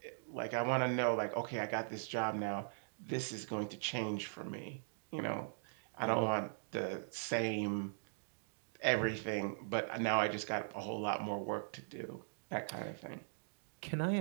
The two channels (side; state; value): left; silent; digital silence